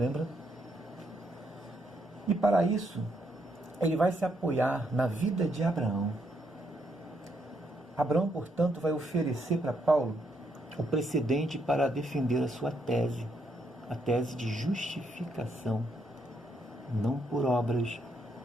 E para isso, ele vai se apoiar na vida de Abraão. Abraão, portanto, vai oferecer para Paulo o precedente para defender a sua tese, a tese de justificação, não por obras,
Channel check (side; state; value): both; normal; correlation 0.76